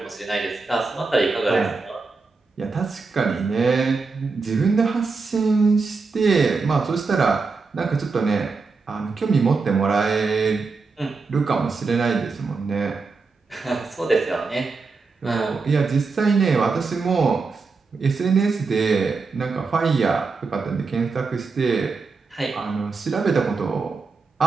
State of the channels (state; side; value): quieter; left; 4.4 dB